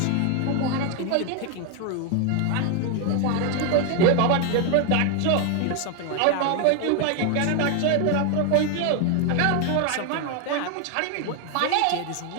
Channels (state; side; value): different; both; correlation 0.01